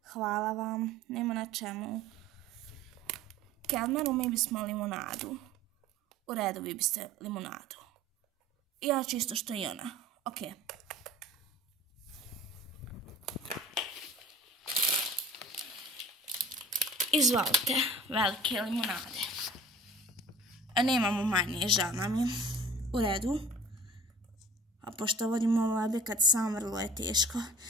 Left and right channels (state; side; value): normal; both; correlation 0.43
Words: Hvala vam. Nema na čemu. Kelmeru, mi bismo limonadu. U redu, vi biste limonadu. I ja čisto što i ona. Ok. Izvolite, velike limonade. Nemamo manje, žal nam je. U redu. A pošto vodimo ovo objekat sam, vrlo je teško.